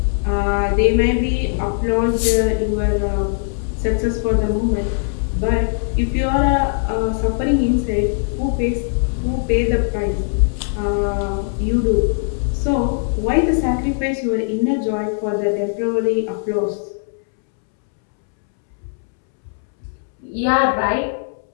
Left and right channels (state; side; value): silent; right; 66 dB below the other